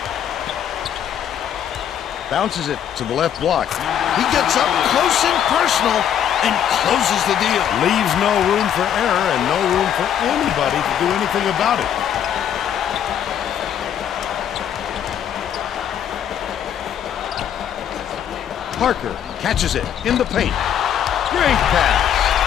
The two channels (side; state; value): right; quieter; 9.5 dB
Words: Bounces it to the left block. He gets up close and personal and closes the deal. Leaves no room for error and no room for anybody to do anything about it. Parker catches it in the paint. Great